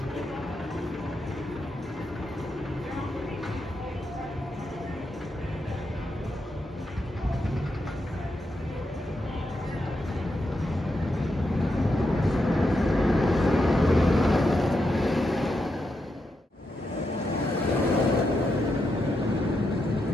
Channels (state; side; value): normal; both; correlation 0.84